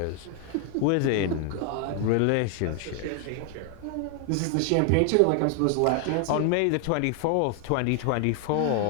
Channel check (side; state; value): both; different; correlation 0.00